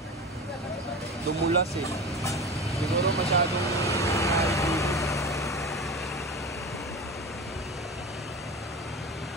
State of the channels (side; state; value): both; normal; correlation 0.29